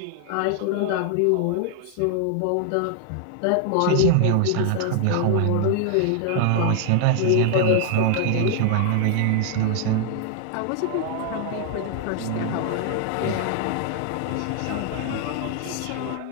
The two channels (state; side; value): different; both; correlation 0.00